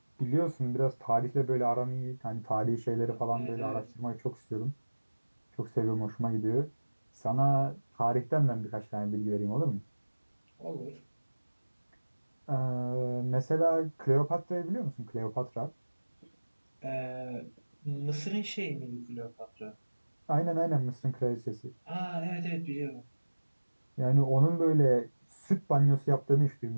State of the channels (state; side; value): inverted; both; correlation -1.00